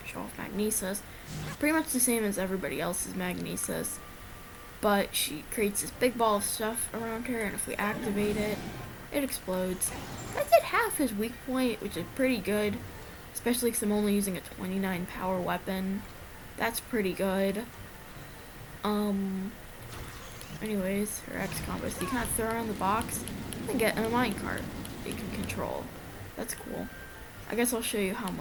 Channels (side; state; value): both; identical; correlation 1.00